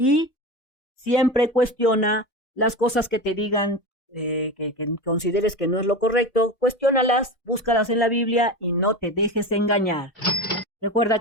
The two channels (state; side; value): late; right; 1.3 ms